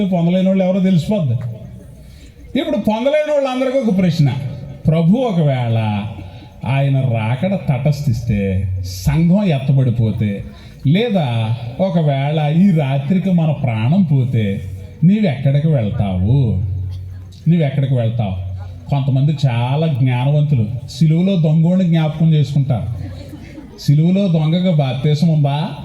పొందలేని వాళ్ళు ఎవరో తెలిసిపోద్ది. ఇప్పుడు పొందలేని వాళ్ళందరికీ ఒక ప్రశ్న. ప్రభు ఒకవేళ ఆయన రాకడ తటస్థిస్తే, సంఘం ఎత్తబడిపోతే, లేదా ఒకవేళ ఈ రాత్రికి మన ప్రాణం పోతే నీవెక్కడికి వెళ్తావు? కొంతమంది చాలా జ్ఞానవంతులు సిలువలో దొంగోడిని జ్ఞాపకం చేసుకుంటారు. సిలువలో దొంగగా బాప్తీసం ఉందా?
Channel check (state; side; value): identical; both; correlation 1.00